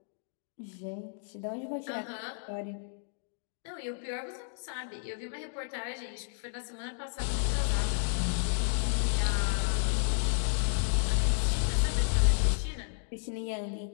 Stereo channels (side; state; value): right; silent; digital silence